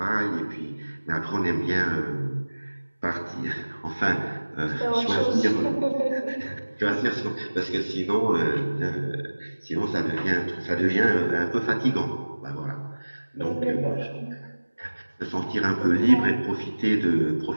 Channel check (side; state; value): both; inverted; correlation -1.00